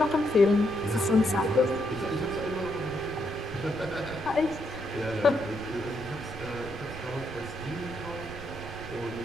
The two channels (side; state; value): right; noise; rumble, 14 dB below the sound